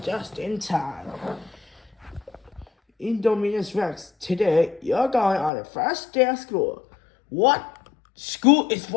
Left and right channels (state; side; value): drops out; right; at 5.5 s